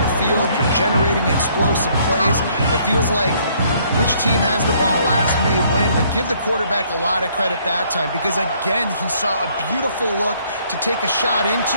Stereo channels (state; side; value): inverted; both; correlation -0.64